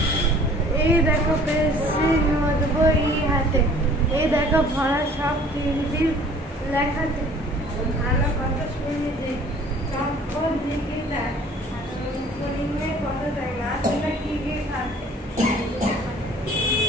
এই দেখো পেন্সিল নোট বই হাতে, এই দেখো ভরা সব তিনটি লেখাতে, ভালো কথা শুনিতে চম্পর দিকে দেয়, কত দেয় না শুনে কি গিয়ে খাতে,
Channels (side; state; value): both; normal; correlation 0.52